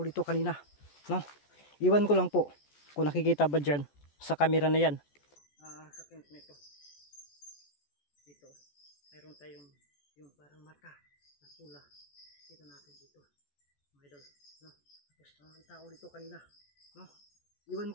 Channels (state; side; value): late; right; 14 ms